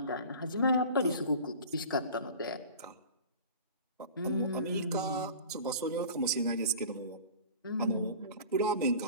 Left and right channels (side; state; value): both; inverted; correlation -0.40